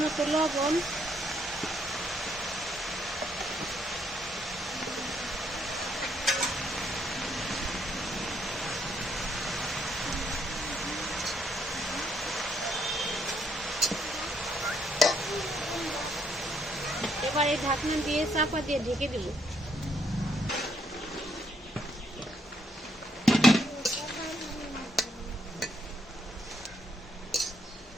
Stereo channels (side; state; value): both; normal; correlation 0.72